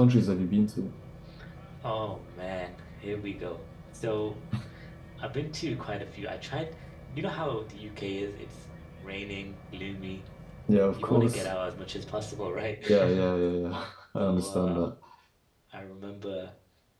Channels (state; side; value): identical; both; correlation 1.00